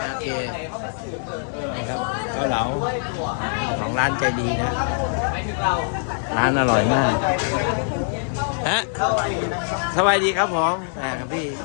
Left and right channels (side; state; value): right; silent; 63 dB below the other